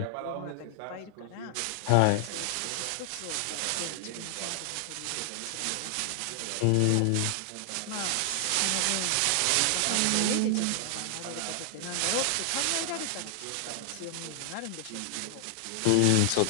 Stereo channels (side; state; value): both; different; correlation 0.00